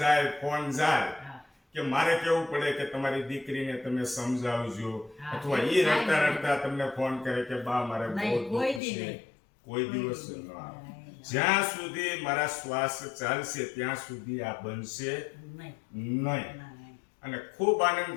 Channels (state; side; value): drops out; right; at 8.8 s